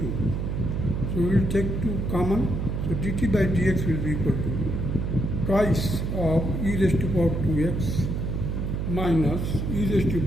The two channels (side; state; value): right; noise; hum, 1 dB below the sound